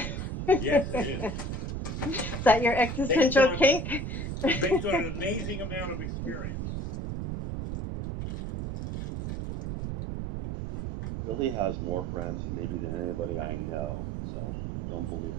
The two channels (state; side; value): noise; right; rumble, 4 dB below the sound